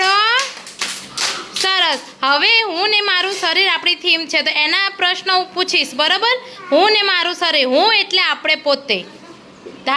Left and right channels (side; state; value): both; identical; correlation 1.00